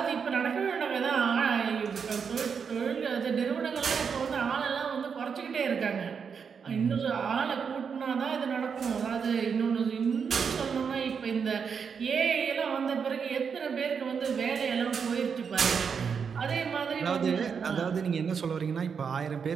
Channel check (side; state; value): left; quieter; 6.4 dB